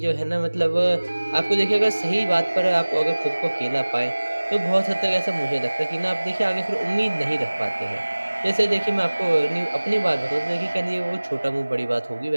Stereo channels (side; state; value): both; inverted; correlation -1.00